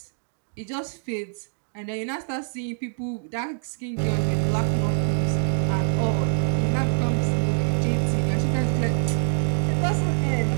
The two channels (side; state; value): left; silent; digital silence